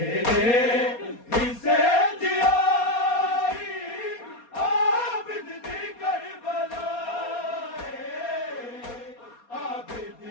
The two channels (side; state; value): right; late; 4.2 ms